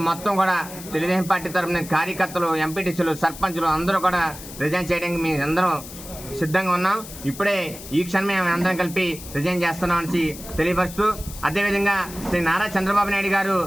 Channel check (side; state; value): left; noise; hiss, 14 dB below the sound